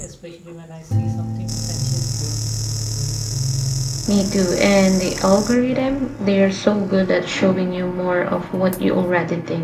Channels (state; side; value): identical; both; correlation 1.00